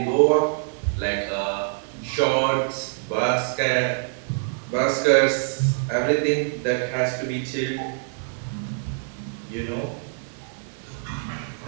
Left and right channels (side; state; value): left; silent; digital silence